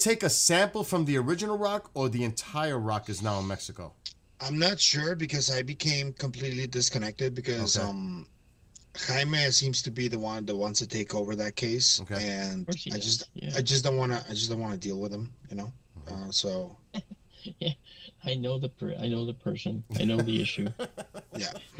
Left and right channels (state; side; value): identical; both; correlation 1.00